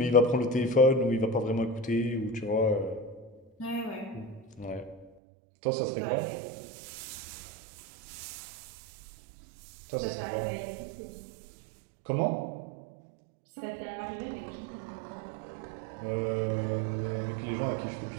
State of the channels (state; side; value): drops out; left; at 5.1 s